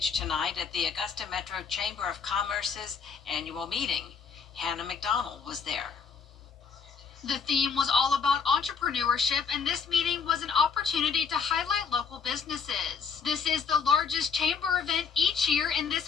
tonight at the Augusta Metro Chamber of Commerce's annual meeting. Hannah McDonald was there. The theme was all about entrepreneurship, and this meeting was an opportunity to highlight local businesses. This is the largest chamber event each year, and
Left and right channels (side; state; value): right; quieter; 6.0 dB